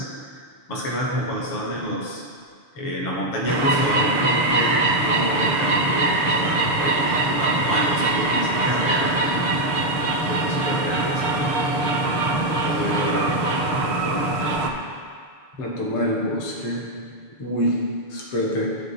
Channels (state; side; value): late; right; 6.9 ms